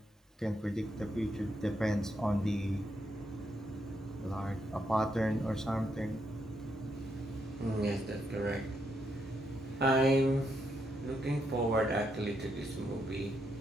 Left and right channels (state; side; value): normal; both; correlation 0.79